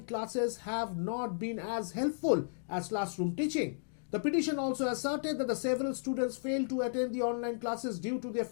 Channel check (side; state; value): right; silent; digital silence